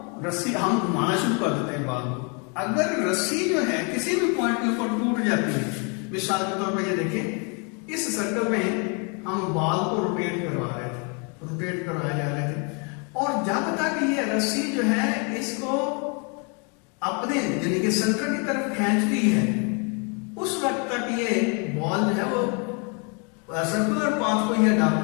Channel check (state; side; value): quieter; right; 35.3 dB